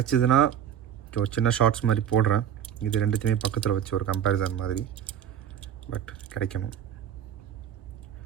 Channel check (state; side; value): quieter; left; 9.5 dB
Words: ஒரு சின்ன ஷார்ட்ஸ் மாதிரி போடுறேன். இது ரெண்டுத்தையுமே பக்கத்தில் வச்சு ஒரு கம்பேரிசன் மாதிரி, பட் கிடைக்கணும்.